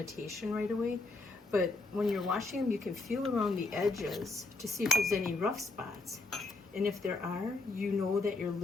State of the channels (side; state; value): right; quieter; 3.4 dB